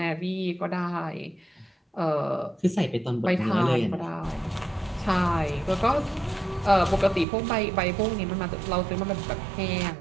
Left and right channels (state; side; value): drops out; left; at 7.2 s